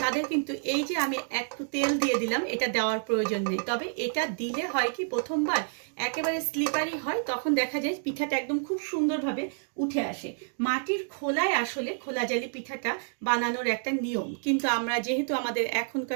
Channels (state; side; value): silent; left; digital silence